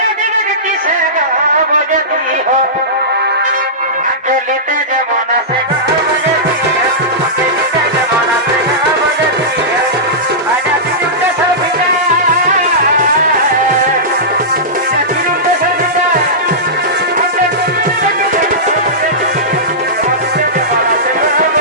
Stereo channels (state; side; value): normal; both; correlation -0.16